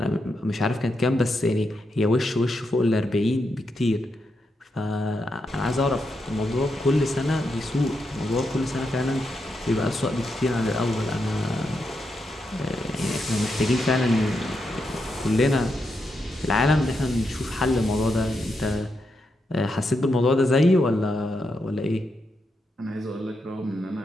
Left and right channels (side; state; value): both; normal; correlation 0.84